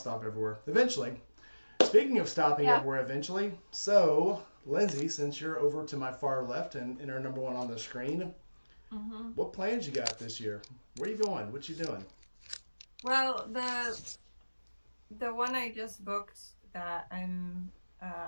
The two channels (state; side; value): inverted; both; correlation -1.00